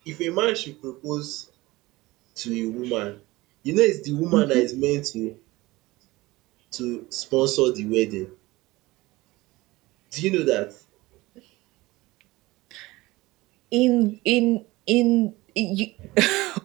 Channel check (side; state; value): left; quieter; 20.2 dB